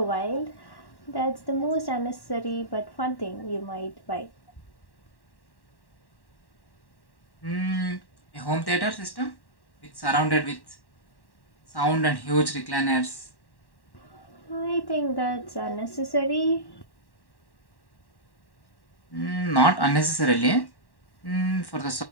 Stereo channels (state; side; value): late; right; 1.1 ms